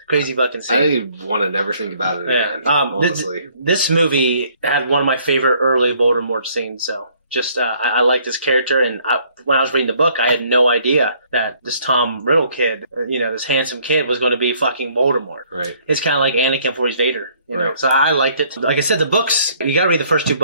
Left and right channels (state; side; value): inverted; both; correlation -0.62